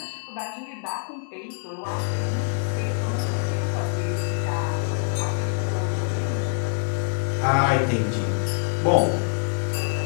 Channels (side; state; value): right; silent; 62 dB below the other